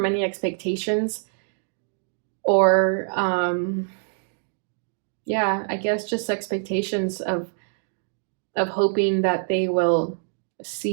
any expectations, or yeah, I guess just expectations of hoping that they will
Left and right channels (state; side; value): silent; left; digital silence